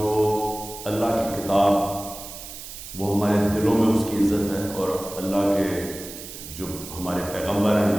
اللہ کی کتاب وہ ہمارے دلوں میں اس کی عزت ہے، اور اللہ کے جو ہمارے پیغمبر ہیں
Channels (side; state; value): right; noise; hiss, 12 dB below the sound